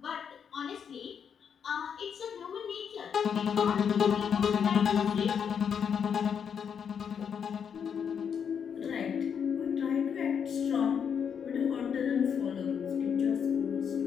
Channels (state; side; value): quieter; right; 7.4 dB